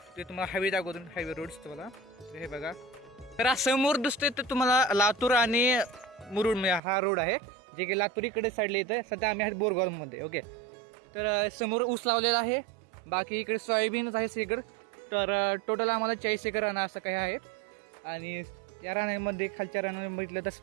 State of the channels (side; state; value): left; drops out; at 6.8 s